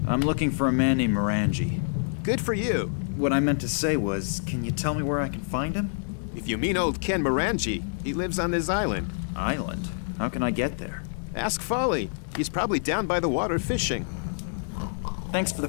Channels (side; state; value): right; silent; digital silence